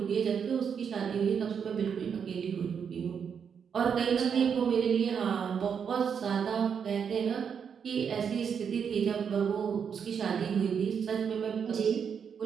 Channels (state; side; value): quieter; left; 7.1 dB